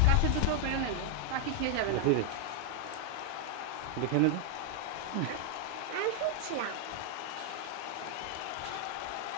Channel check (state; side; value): different; both; correlation 0.00